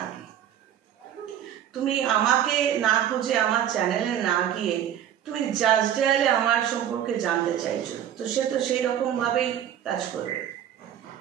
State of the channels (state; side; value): quieter; left; 10.3 dB